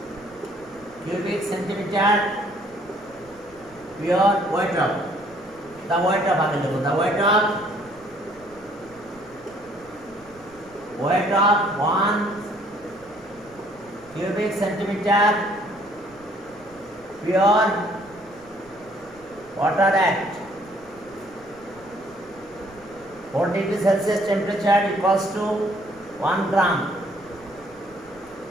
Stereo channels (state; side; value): noise; right; rumble, 27 dB below the sound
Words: cubic centimeter pure weight of the weight of আগে দেখো, the weight of 1 cubic centimeter pure water at 4 degree Celsius temperature equals to 1 gram।